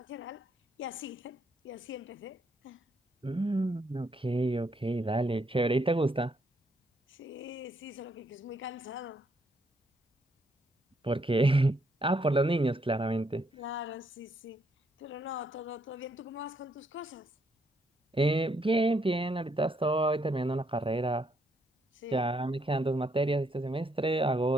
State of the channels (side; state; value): both; normal; correlation 0.73